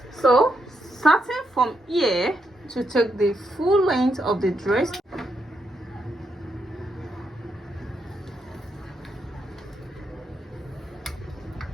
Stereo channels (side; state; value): both; normal; correlation 0.80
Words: So starting from here to take the full length of the dress,